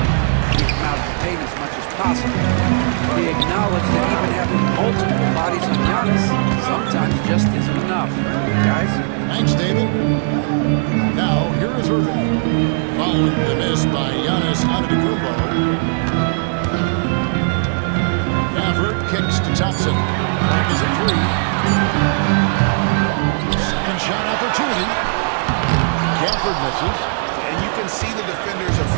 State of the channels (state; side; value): silent; left; digital silence